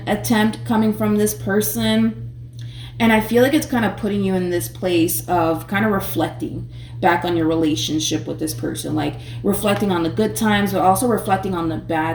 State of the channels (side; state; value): both; identical; correlation 1.00